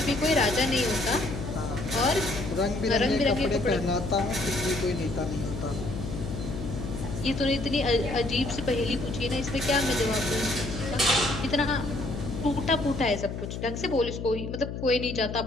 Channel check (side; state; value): left; noise; hum, 6 dB below the sound